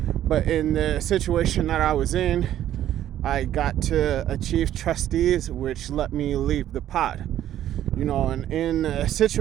But in the situation that I was in, I got to achieve trustees, which let me leave the pod. And in the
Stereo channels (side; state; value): left; quieter; 11.9 dB